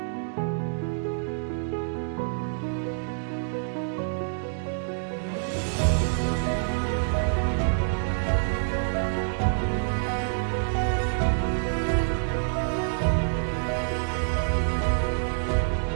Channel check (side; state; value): left; silent; digital silence